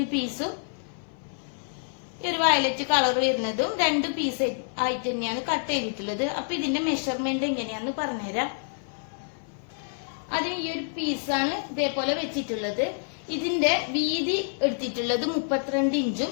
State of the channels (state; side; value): silent; right; 57 dB below the other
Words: പീസും ഈ ഒരു വയലറ്റ് കളർ വരുന്നതും 2 പീസ് ആയിട്ട് തന്നെയാണ് കട്ട് ചെയ്തിട്ടുള്ളത്. അപ്പൊ ഇതിന്റെ മെഷർമെന്റ് എങ്ങനെയാന്ന് പറഞ്ഞുതരാം. അതിന് ഈ ഒരു പീസാണ് ഇതേപോലെ വെച്ചിട്ടുള്ളത്. ഇതിന്റെ വീതി എടുത്തിട്ടുള്ളത് 32